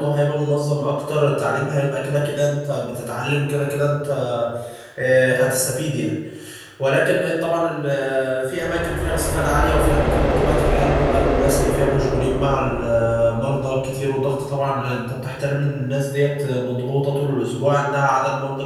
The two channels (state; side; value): identical; both; correlation 1.00